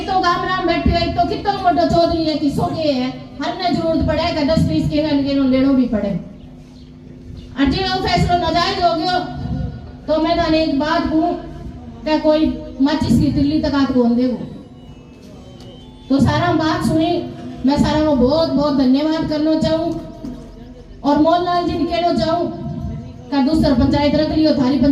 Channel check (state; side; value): identical; both; correlation 1.00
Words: तो गाम राम बैठे है, एक तो कितना मोटा चौधरी है, किसो के है, हर ने जरूरत पड़े कि 10-20 के लेनो भी पड़े। अजे वो फैसला नाजायज हो गयो तो मैं थाने एक बात कहूं कि कोई माचिस की तिल्ली तक हाथ कौन देगो। तो सारा बात सुनी, मैं सारा को बहुत बहुत धन्यवाद करना चाहूं, और मोहनलाल जी ने कहना चाहूं कि दूसरा पंचायत रख लियो, थारी